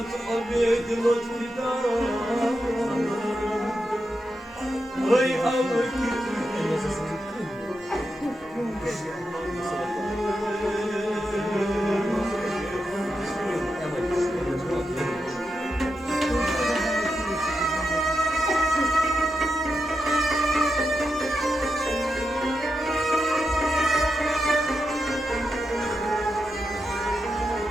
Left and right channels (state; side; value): normal; both; correlation 0.87